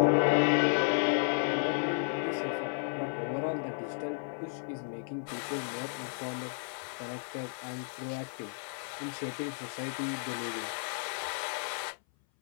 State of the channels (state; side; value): silent; right; 56 dB below the other